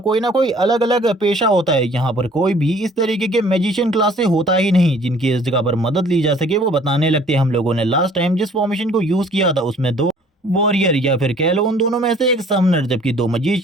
ना कोई अलग अलग पेशा होता है। यहाँ पर कोई भी इस तरीके के मैजिशियन क्लास से होता ही नहीं जिनकी इस जगह पर मदद ली जा सके। वो बताने लगते हैं हम लोगों ने लास्ट टाइम जिस फॉर्मेशन को यूज किया था उसमें 2 वॉरियर या फिर कह लो उन दोनों में से एक समनर, जबकि 2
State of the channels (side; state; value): both; normal; correlation 0.55